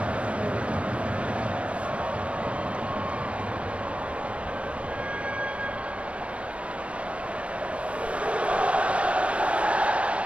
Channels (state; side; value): late; left; 0.062 ms